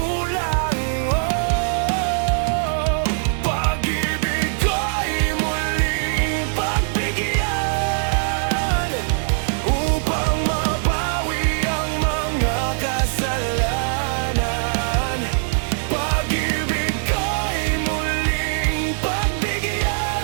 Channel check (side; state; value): left; silent; 57 dB below the other